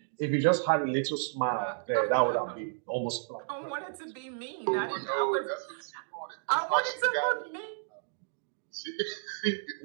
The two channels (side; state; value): left; silent; digital silence